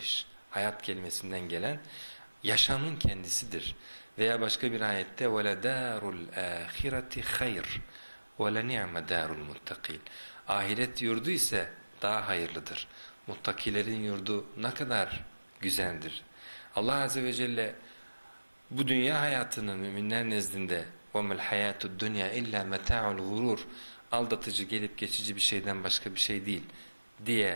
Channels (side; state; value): both; inverted; correlation -1.00